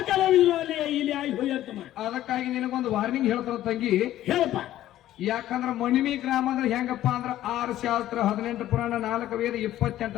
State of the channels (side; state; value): right; quieter; 13.4 dB